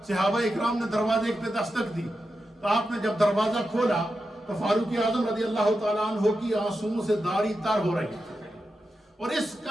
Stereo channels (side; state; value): both; normal; correlation 0.89